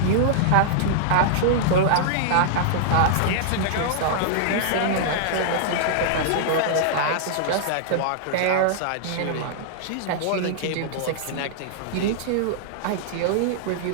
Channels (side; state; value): both; different; correlation -0.01